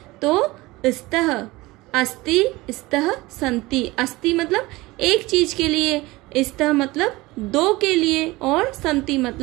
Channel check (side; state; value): left; quieter; 20.7 dB